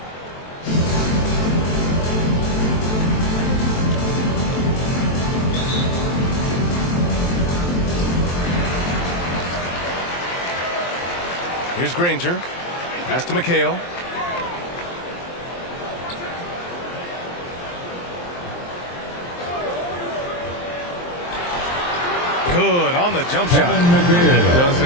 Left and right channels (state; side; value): late; right; 23 ms